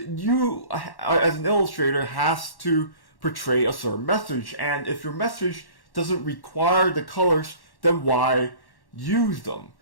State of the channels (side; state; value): right; late; 1.1 ms